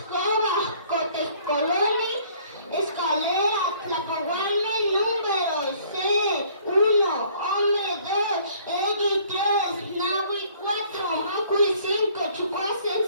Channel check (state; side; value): inverted; both; correlation -0.58